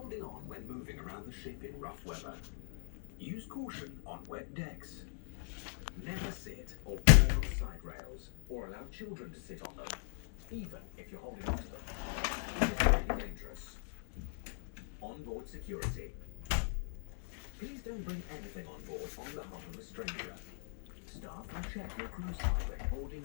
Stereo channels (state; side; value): silent; right; digital silence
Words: holding on when moving around the ship in rough weather. Use caution on wet decks. Never sit or board on side rails, or allow children to sit on them, even if you're holding onto them. It is really dangerous. Onboard security. Please don't bring anything on board on behalf of a stranger. Staff will check your cruise hardware boarding